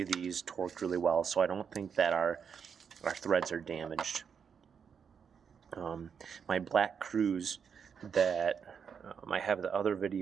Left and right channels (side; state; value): left; quieter; 6.8 dB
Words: of these torqued really well, so I don't think that our threads are damaged. My black Cruze that I have the other